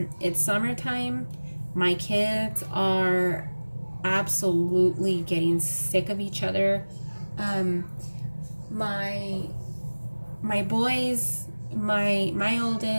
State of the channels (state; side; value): inverted; both; correlation -1.00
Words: summertime. My kids are absolutely getting sick of each other. Um, my my boys, my